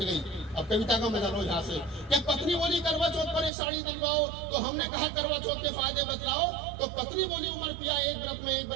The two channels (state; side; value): drops out; left; at 3.5 s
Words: अब कविता का मजा लो यहाँ से। कि पत्नी बोली करवा चौथ पर एक साड़ी दिलवाओ, तो हमने कहा करवा चौथ के फायदे बतलाओ। तो पत्नी बोली उमर पिया एक व्रत में एक